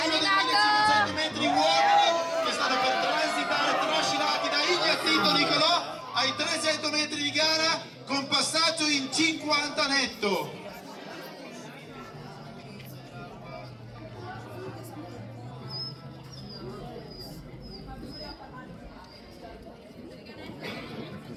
dei 1500 metri uomini che stanno per transitare trascinati da Ignazito Nicolò ai 300 metri di gara con passaggio in 50 netto.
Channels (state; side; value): identical; both; correlation 1.00